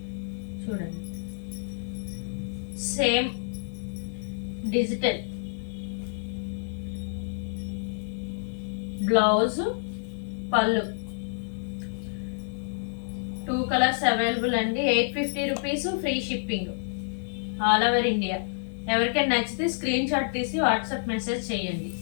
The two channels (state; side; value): silent; right; digital silence